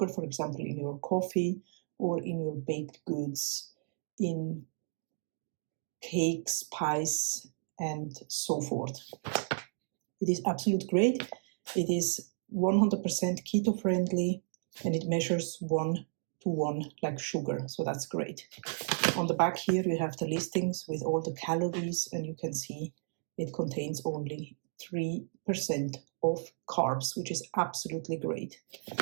for example, in your coffee or in your baked goods, in cakes, pies, and so forth. It is absolute great. It is 100% keto friendly, and it measures 1-to-1 like sugar, so that's great. On the back here you have the listings with all the calories, and you can see it contains only 3% of carbs, which is absolutely great.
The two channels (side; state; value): left; silent; digital silence